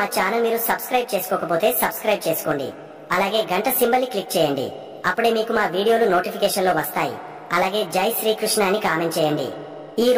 ఛానల్ మీరు సబ్స్క్రైబ్ చేసుకోకపోతే సబ్స్క్రైబ్ చేసుకోండి. అలాగే గంట సింబల్ ని క్లిక్ చేయండి. అప్పుడే మీకు మా వీడియోలు నోటిఫికేషన్ లో వస్తాయి. అలాగే జై శ్రీకృష్ణ అని కామెంట్ చేయండి. ఈ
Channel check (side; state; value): both; identical; correlation 1.00